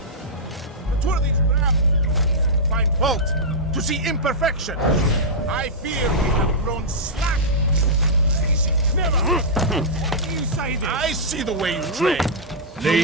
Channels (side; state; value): both; normal; correlation -0.11